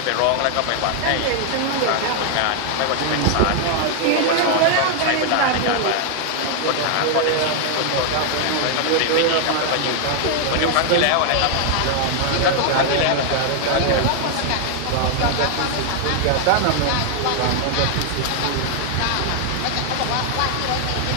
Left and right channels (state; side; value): different; both; correlation 0.00